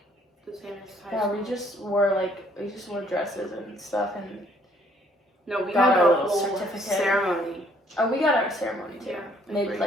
the same as high school. we just wore dresses and stuff, and No, we got had our a little whole certificate. ceremony. oh, we got our ceremony too. Yeah. Made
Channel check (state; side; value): normal; both; correlation 0.64